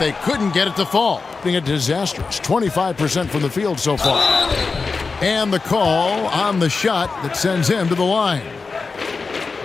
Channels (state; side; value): quieter; right; 4.4 dB